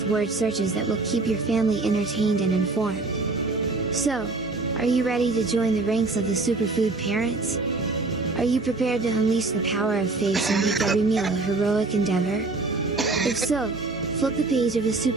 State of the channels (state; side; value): quieter; left; 3.5 dB